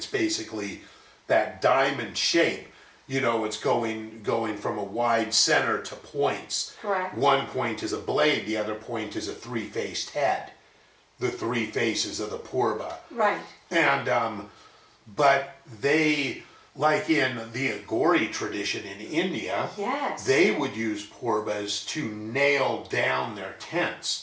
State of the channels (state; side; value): identical; both; correlation 1.00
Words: basically that diamond shape. It's going from a wide center to points. Correct. One point is a blade, the other point is a three-faced head. The three faces of the Purba. Right. And, but they, like in the Agori tradition in India, yes, they would use Purbas to nail down their